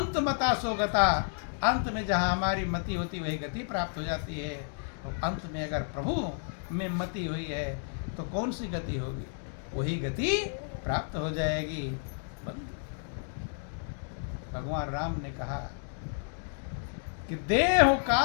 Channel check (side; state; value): right; silent; 57 dB below the other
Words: मता सो गता, अंत में जहां हमारी मति होती वही गति प्राप्त हो जाती है। और अंत में अगर प्रभु में मति हुई है तो कौन सी गति होगी, वही गति प्राप्त हो जाएगी। भगवान राम ने कहा कि देह